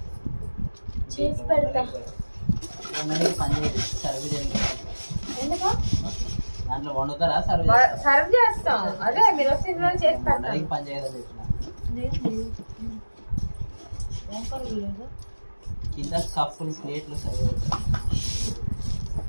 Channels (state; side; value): inverted; both; correlation -1.00